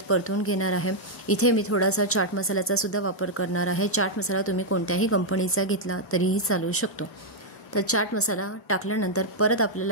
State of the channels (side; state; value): both; normal; correlation -0.03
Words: परतून घेणार आहे। इथे मी थोडासा चाट मसाल्याचा सुद्धा वापर करणार आहे। चाट मसाला तुम्ही कोणत्याही कंपनीचा घेतला तरीही चालू शकतो। तर चाट मसाला टाकल्यानंतर परत